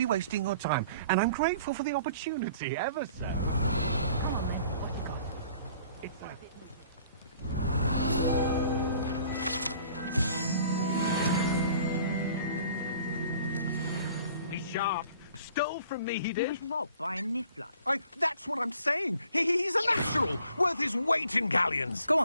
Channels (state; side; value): inverted; both; correlation -0.54